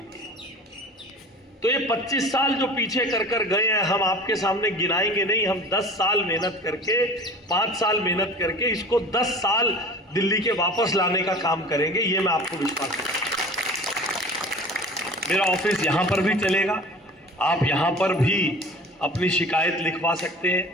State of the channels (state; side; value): normal; both; correlation 0.41